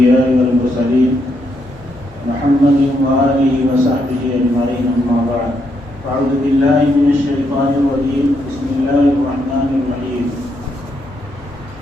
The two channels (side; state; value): both; normal; correlation 0.77